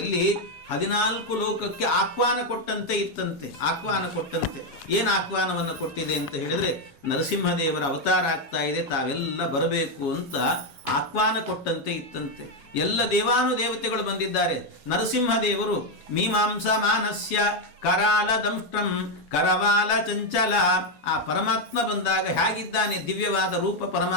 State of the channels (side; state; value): right; late; 4.8 ms